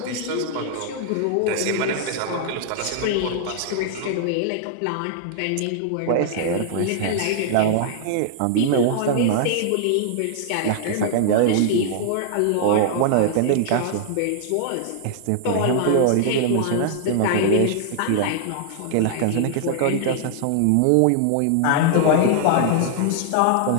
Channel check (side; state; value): both; different; correlation -0.01